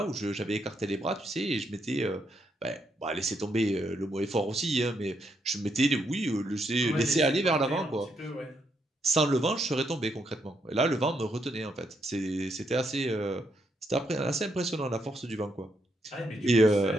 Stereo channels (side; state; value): both; normal; correlation 0.77